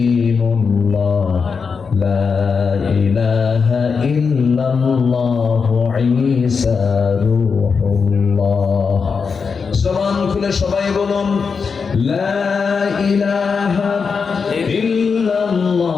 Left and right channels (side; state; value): right; quieter; 5.5 dB